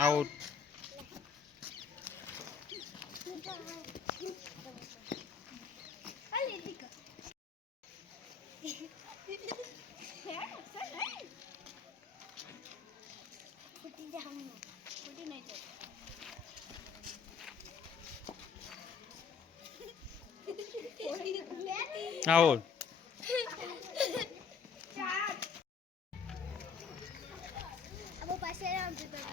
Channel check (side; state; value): right; quieter; 6.1 dB